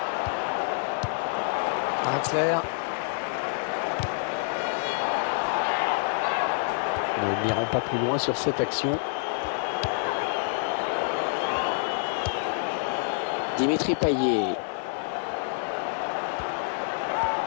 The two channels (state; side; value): silent; right; digital silence